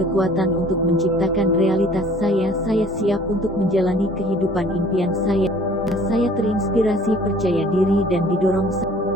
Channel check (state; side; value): normal; both; correlation 0.52